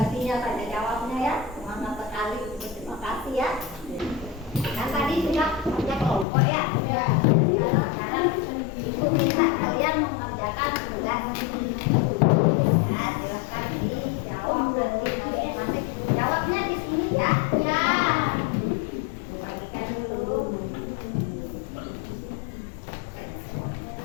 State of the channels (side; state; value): right; drops out; at 6.2 s